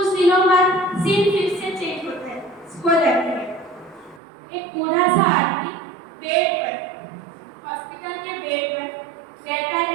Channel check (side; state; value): left; drops out; at 4.2 s